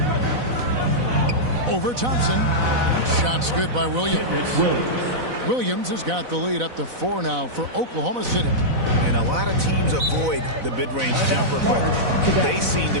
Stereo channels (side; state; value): left; late; 4.0 ms